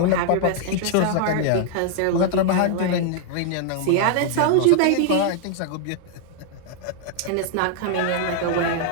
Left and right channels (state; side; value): different; both; correlation 0.00